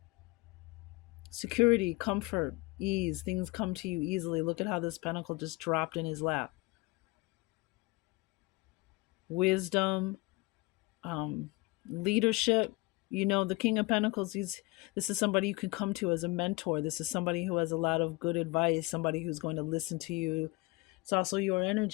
Security, comfort, ease. Things come to you easily. Look at how this pentacle just dropped in his lap. Wisdom, leadership. The King of Pentacles, this is somebody you can come to as a mentor. This is somebody who has a lot of good advice, somebody who's going to listen to you. It's also your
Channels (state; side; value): quieter; right; 23.0 dB